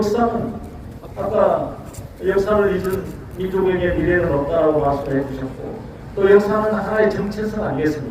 아까 역사를 잊은 민족에게 미래는 없다라고 말씀을 해주셨고 또 역사는 하나의 정체성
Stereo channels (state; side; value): identical; both; correlation 1.00